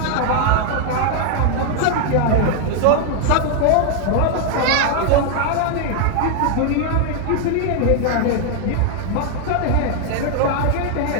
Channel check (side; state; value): both; different; correlation 0.00